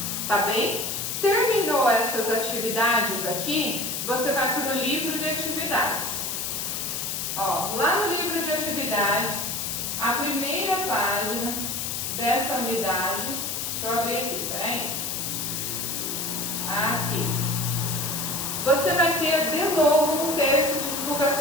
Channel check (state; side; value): noise; left; hiss, 3 dB below the sound